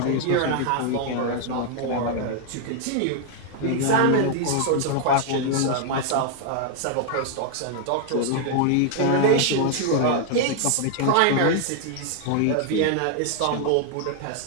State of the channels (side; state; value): both; different; correlation 0.00